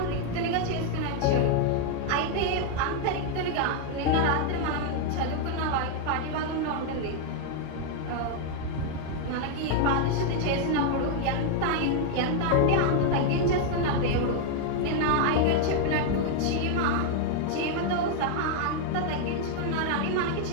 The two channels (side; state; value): both; different; correlation 0.00